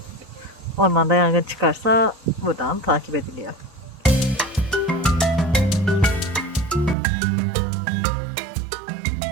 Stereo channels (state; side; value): drops out; left; at 7.0 s